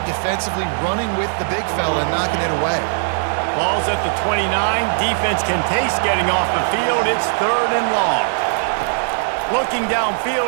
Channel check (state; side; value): silent; left; 66 dB below the other